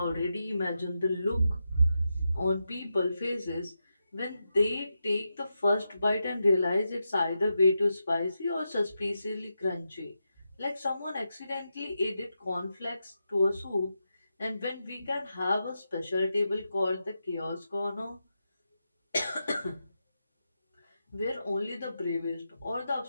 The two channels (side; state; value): both; inverted; correlation -0.87